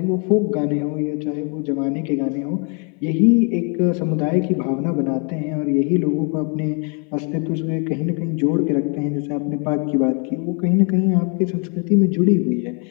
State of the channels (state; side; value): quieter; right; 37.2 dB